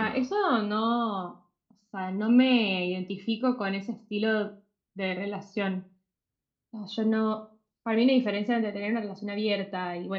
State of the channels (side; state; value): both; identical; correlation 1.00